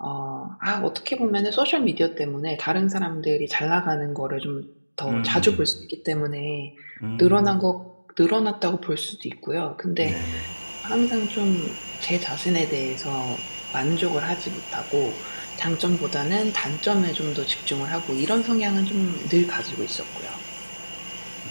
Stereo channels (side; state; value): both; inverted; correlation -1.00